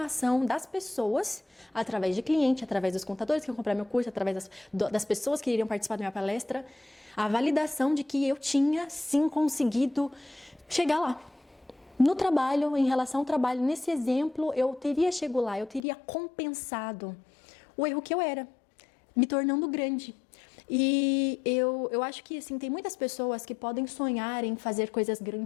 das pessoas, através de cliente, através dos contadores que vão comprar meu curso, através das pessoas que iriam participar da minha palestra, a validação de que eu tinha, sim, conseguido chegar lá. No trabalho, em relação ao trabalho, nesse exemplo, eu teria chegado lá, eu teria compensado o erro que eu era, me tornando grande. E eu acho que, assim, tem muitas pessoas que podem sonhar em fazer coisas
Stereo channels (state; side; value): drops out; right; at 15.8 s